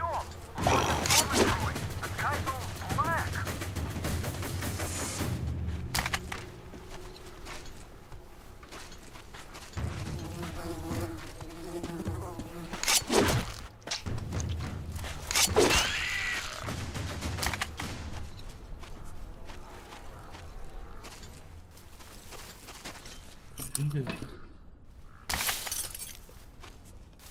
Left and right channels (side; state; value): both; identical; correlation 1.00